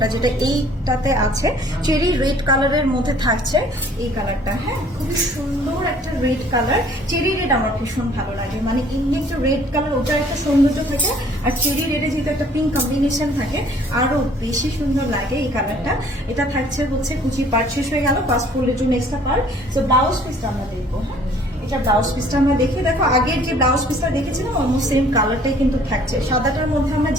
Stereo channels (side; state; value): both; normal; correlation 0.56